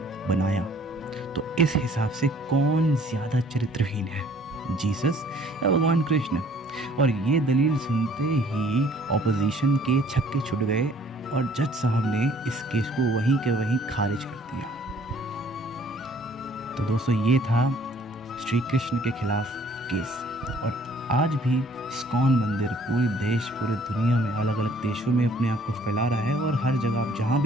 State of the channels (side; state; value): both; normal; correlation 0.57